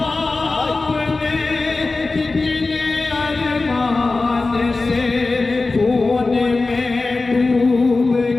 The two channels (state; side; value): quieter; right; 3.6 dB